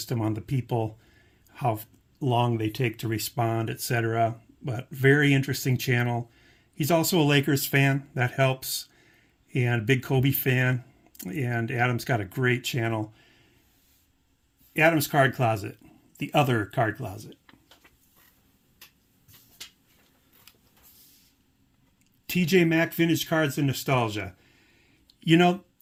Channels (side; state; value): both; identical; correlation 1.00